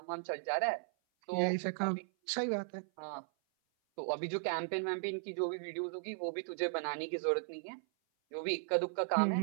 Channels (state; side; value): silent; left; 53 dB below the other